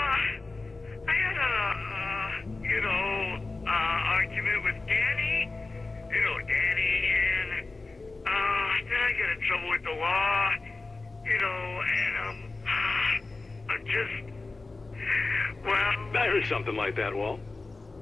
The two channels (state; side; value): quieter; right; 3.5 dB